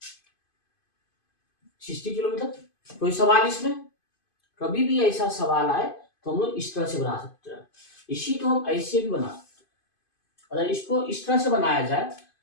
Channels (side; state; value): right; late; 2.5 ms